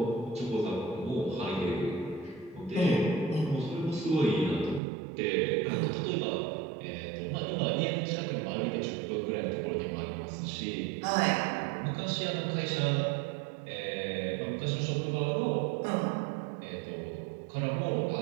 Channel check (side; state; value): left; drops out; at 4.8 s